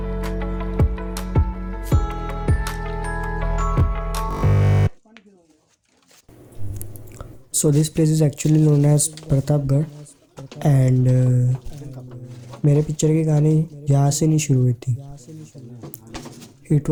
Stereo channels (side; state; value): both; identical; correlation 1.00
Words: So this place is actually known as Pratap Garh, and मेरे picture की कहानी यहाँ से नहीं शुरू हुई थी. It